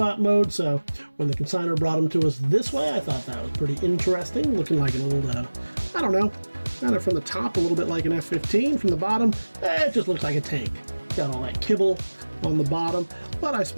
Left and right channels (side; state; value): both; inverted; correlation -1.00